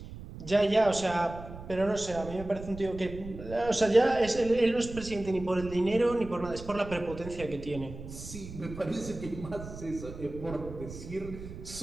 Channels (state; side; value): noise; right; rumble, 12 dB below the sound